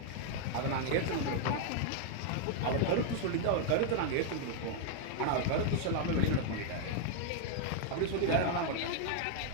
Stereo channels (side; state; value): both; different; correlation 0.00